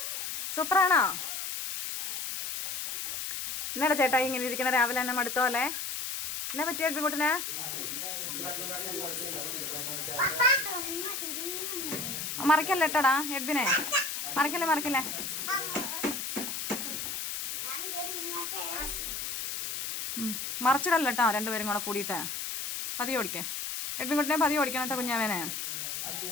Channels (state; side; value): noise; left; hiss, 4 dB below the sound